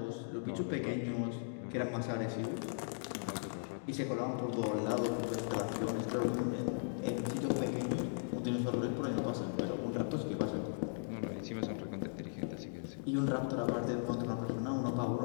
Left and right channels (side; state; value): right; silent; digital silence